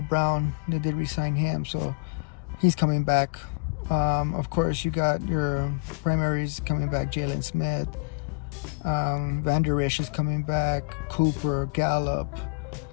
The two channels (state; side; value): quieter; right; 31.1 dB